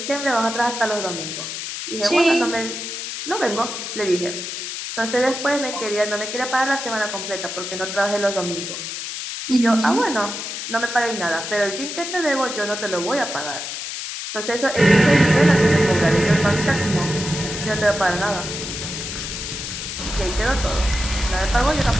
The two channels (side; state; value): left; noise; hiss, 6 dB below the sound